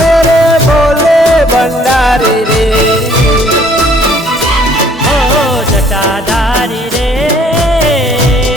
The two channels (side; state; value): both; normal; correlation 0.60